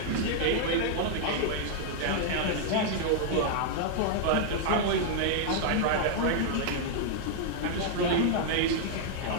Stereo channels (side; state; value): both; different; correlation -0.01